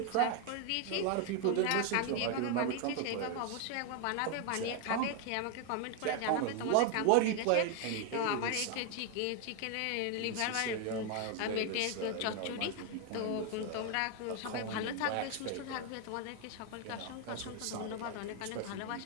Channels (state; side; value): different; both; correlation 0.01